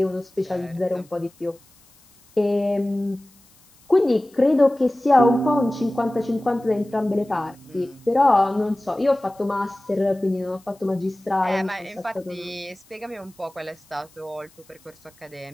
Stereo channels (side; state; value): left; noise; hiss, 29 dB below the sound